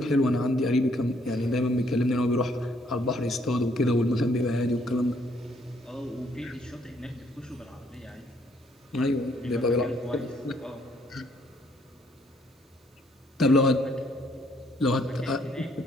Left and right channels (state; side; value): normal; both; correlation 0.67